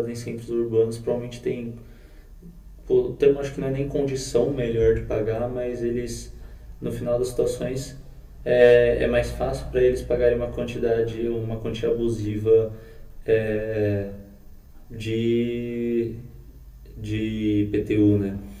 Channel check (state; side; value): identical; both; correlation 1.00